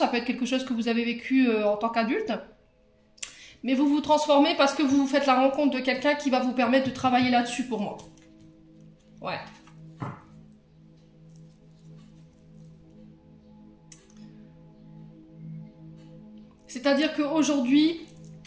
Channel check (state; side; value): identical; both; correlation 1.00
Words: peut être quelque chose que vous avez vécu en tant qu'adulte. Mais vous vous transformez parce que vous faites la rencontre de quelqu'un qui va vous permettre de travailler là-dessus pour moi. Ouais. C'est-à-dire qu'aujourd'hui,